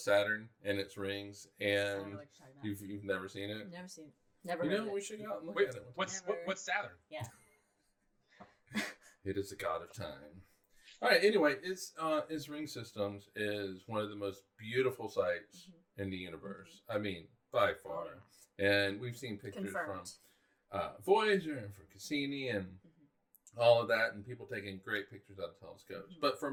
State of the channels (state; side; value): identical; both; correlation 1.00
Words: Saturn and its rings. And you've never seen it? Never seen it. Never You heard know, of it. we should go out and look Wait, at it. what's Saturn? Yeah. It is the god of time. All right. Anyway, its ring systems is one of the most beautiful sights in the universe. I mean, by far. And we've seen pictures from Voyager and from Cassini and all of that, and people taking great pictures out of telescopes. But for